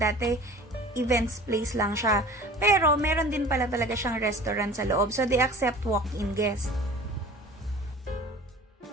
events place lang siya. Pero meron din pala talaga siyang restaurant sa loob. So they accept walk-in guests.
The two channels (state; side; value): normal; both; correlation 0.43